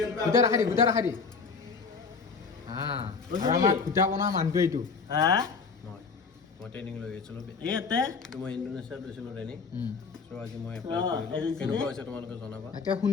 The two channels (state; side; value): quieter; right; 5.1 dB